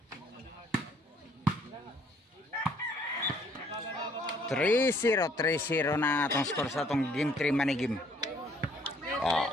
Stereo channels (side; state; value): both; normal; correlation 0.63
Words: Three zero na atong score sa atong game 3 money game.